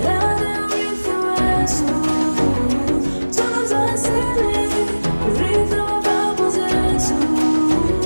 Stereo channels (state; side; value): inverted; both; correlation -1.00